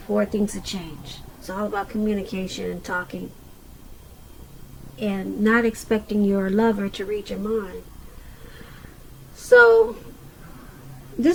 for things to change. It's all about communication and talking, and not expecting your lover to read your mind. So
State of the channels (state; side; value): identical; both; correlation 1.00